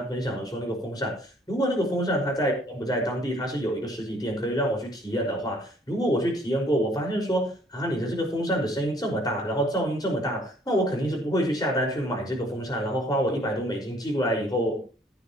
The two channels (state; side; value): normal; both; correlation 0.60